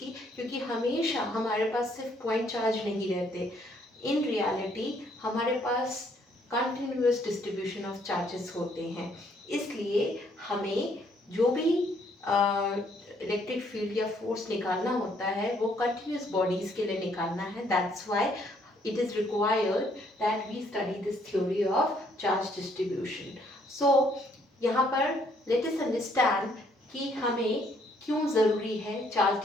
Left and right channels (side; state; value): both; normal; correlation 0.67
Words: की क्योंकि हमेशा हमारे पास सिर्फ पॉइंट चार्ज नहीं रहते। इन रियलिटी हमारे पास कंटिन्यूस डिस्ट्रीब्यूशन ऑफ चार्जेस होते हैं। इसलिए हमें जो भी इलेक्ट्रिक फील्ड या फोर्स निकालना होता है वो कंटिन्यूस बॉडीज के लिए निकालना है। That's why it is required that we study this theory of charge distribution. So यहाँ पर let us understand कि हमें क्यों ज़रूरी है चार्ज